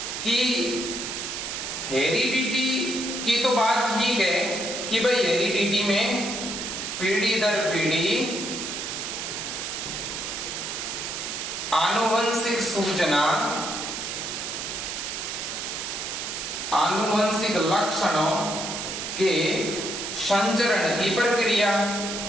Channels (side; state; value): right; noise; hiss, 5 dB below the sound